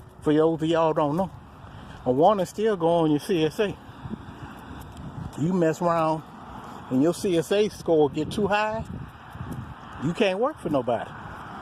For those of y'all don't know, a warning still go on your CSA. You mess around and your CSA score get too high, you can't work for nobody.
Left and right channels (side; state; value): both; identical; correlation 1.00